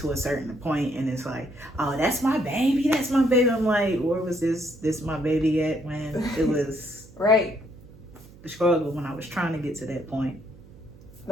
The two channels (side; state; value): right; noise; hum, 22 dB below the sound